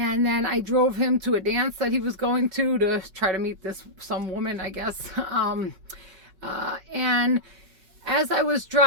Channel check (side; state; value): left; late; 5.3 ms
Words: then I drove him to a dance that he was going to try to meet some woman, I guess. And as I was